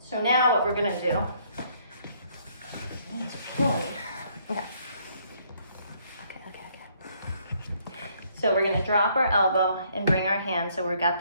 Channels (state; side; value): inverted; both; correlation -0.67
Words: So now what we're gonna do, knees are killing me. Okay. So we're gonna drop our elbow and bring our hand so we've got